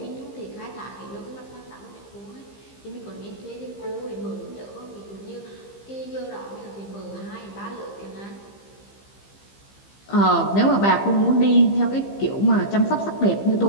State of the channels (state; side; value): late; right; 15 ms